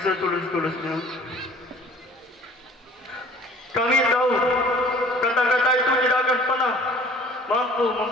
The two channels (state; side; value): normal; both; correlation 0.50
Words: setulus-tulusnya. Kami tahu kata-kata itu tidak akan pernah mampu